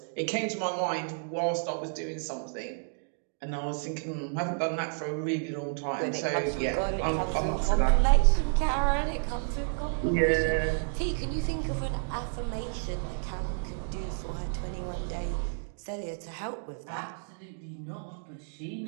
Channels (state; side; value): silent; left; digital silence